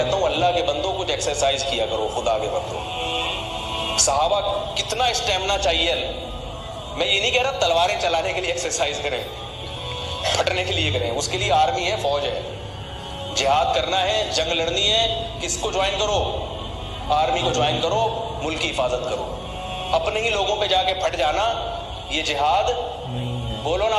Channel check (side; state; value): both; identical; correlation 1.00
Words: ہوں اللہ کے بندوں کچھ ایکسرسائز کیا کرو، خدا کے بندوں۔ صحابہ کتنا اسٹیمنا چاہیے، میں یہ نہیں کہہ رہا تلواریں چلانے کے لیے ایکسرسائز کریں، پھٹنے کے لیے کریں، اس کے لیے آرمی ہے، فوج ہے، جہاد کرنا ہے، جنگ لڑنی ہے، کس کو جوائن کرو؟ آرمی کو جوائن کرو، ملک کی حفاظت کرو۔ اپنے ہی لوگوں پہ جا کے پھٹ جانا یہ جہاد بولو